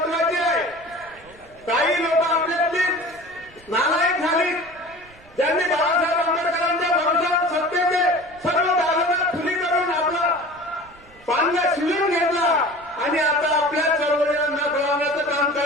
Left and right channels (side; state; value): right; noise; rumble, 26 dB below the sound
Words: आहे. काही लोक आपल्यातली नालायक झाली, ज्यांनी बाळासाहेब आंबेडकरांच्या भरोशावर सत्तेचे सर्व दालना खुली करून आपला पांगा शिवून घेतला आणि आता आपल्या चळवळीला कळवण्याचं काम